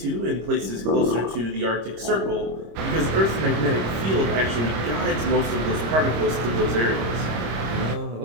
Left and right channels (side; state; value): left; late; 26 ms